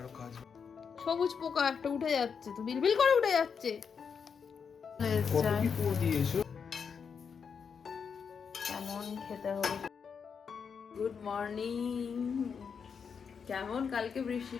কাজ। সবুজ পোকা একটা উঠে যাচ্ছে, তো বিলবিল করে উঠে যাচ্ছে। কত কি পুরো দিয়েছো? কেমন খেতে হবে। Good morning. কেমন কালকে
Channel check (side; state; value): right; quieter; 6.4 dB